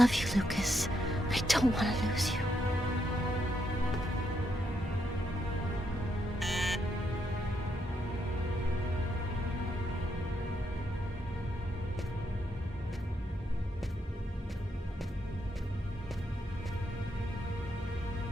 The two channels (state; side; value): normal; both; correlation 0.79